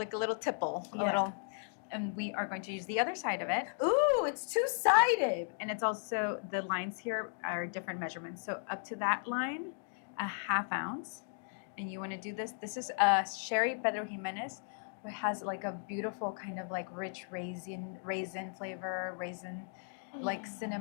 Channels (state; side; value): silent; right; digital silence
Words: little tipple, a Yeah. little. And we are going to use the other side of it. Ooh, it's two-sided. And it's also, the lines here are different measurements. So up to that line, 1/2 ounce. And you want to do this. This is Sherry Pedro Jimenez, which has like a beautiful kind of like rich raisin flavor, like